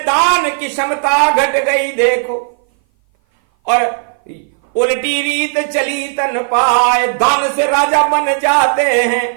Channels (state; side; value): silent; left; 58 dB below the other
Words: की क्षमता घट गई देखो, और उल्टी रीत चली तन पाए। दान से राजा बन जाते हैं,